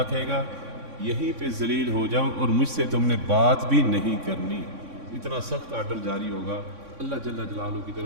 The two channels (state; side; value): late; left; 3.6 ms